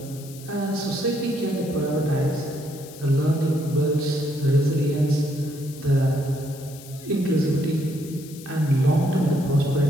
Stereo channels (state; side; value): noise; left; hiss, 18 dB below the sound